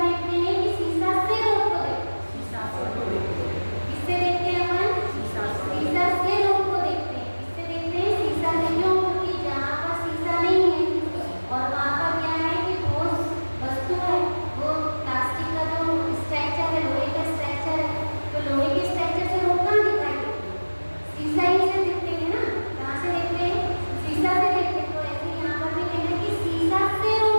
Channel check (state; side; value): inverted; both; correlation -1.00